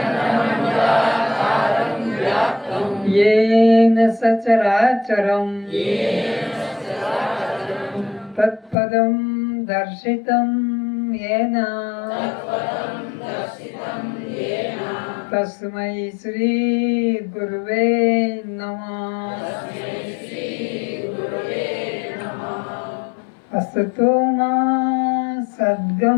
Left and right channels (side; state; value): right; drops out; at 8.8 s